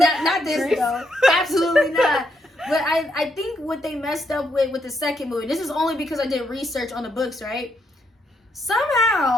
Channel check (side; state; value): both; normal; correlation 0.77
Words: this Grease. though. Absolutely not. But I think what they messed up with the second movie, this is only because I did research on the books, right?